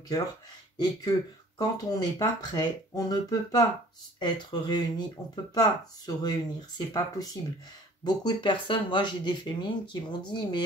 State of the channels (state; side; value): normal; both; correlation 0.52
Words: et que quand on n'est pas prêt, on ne peut pas être réunis, on ne peut pas se réunir, c'est pas possible. Beaucoup de personnes, moi j'ai des féminines qui m'ont dit,